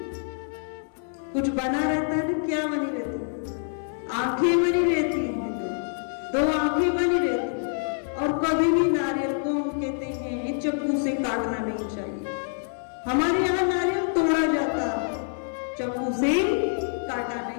कुछ बना रहता है ना, क्या बनी रहती, आंखें बनी रहती हैं, दो आंखें बनी रहती। और कभी भी नारियल को हम कहते हैं चाकू से काटना नहीं चाहिए। हमारे यहाँ नारियल तोड़ा जाता, चाकू से काटा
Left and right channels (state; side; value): silent; right; 61 dB below the other